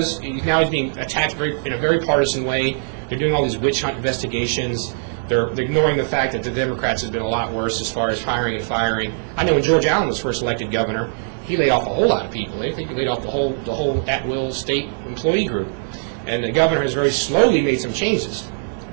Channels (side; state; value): left; silent; digital silence